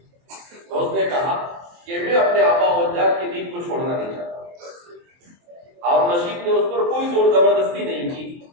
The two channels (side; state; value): left; late; 23 ms